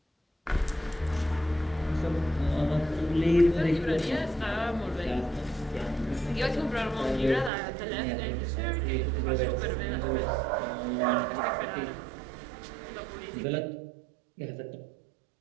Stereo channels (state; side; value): drops out; left; at 7.5 s